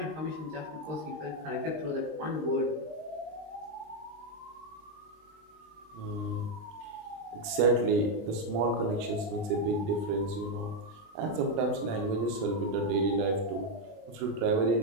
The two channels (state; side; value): late; left; 20 ms